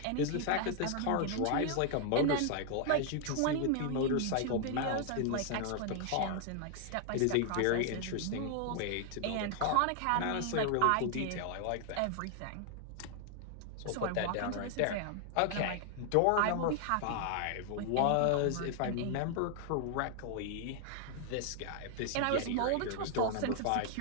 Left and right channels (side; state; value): both; different; correlation 0.00